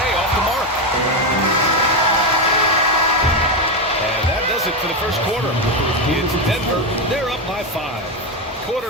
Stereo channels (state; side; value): normal; both; correlation 0.10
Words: off the mark. And that does it for the first quarter. It's Denver. They're up by 5.